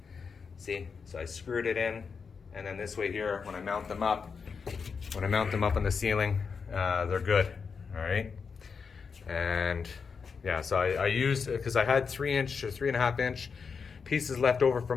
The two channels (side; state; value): right; quieter; 5.6 dB